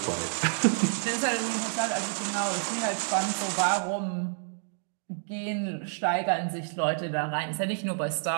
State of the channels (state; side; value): silent; left; digital silence